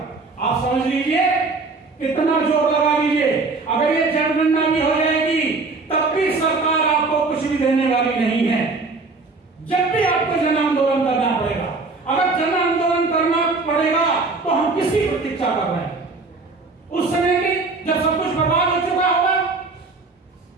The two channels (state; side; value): quieter; left; 3.8 dB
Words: आप समझ लीजिए, कितना जोर लगा लीजिए, अगर ये जनगणना भी हो जाएगी, तब भी सरकार आपको कुछ भी देने वाली नहीं है। जब भी आपको जन आंदोलन करना पड़ेगा। अगर जन आंदोलन करना पड़ेगा तो हम किसी प्रतीक्षा कर रहे हैं? उस समय की जब सब कुछ बर्बाद हो चुका होगा।